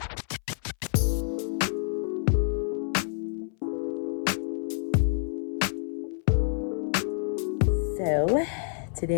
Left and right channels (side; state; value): right; silent; 59 dB below the other